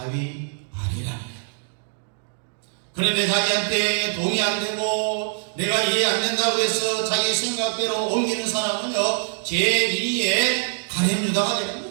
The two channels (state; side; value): silent; left; digital silence